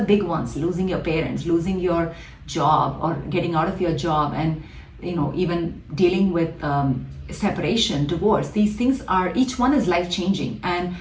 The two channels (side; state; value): both; identical; correlation 1.00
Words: big ones: losing your parents, losing your job or getting out of your job, and even dealing with separation, divorce. These things are, each one is life-changing. And